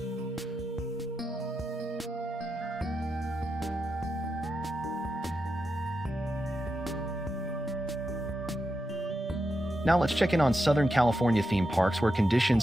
Now let's check in on Southern California theme parks where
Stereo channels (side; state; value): both; normal; correlation 0.87